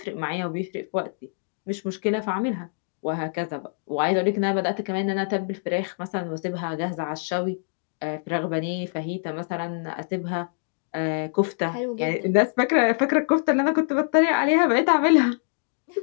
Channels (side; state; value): right; silent; digital silence